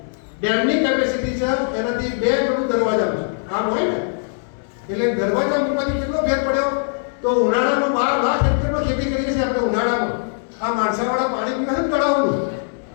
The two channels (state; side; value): silent; right; digital silence